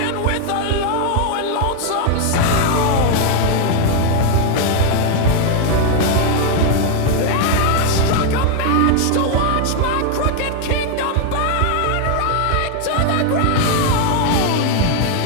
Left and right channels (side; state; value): both; different; correlation 0.00